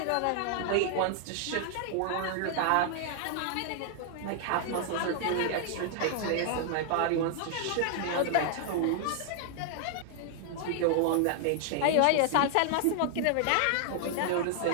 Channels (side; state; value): both; different; correlation 0.00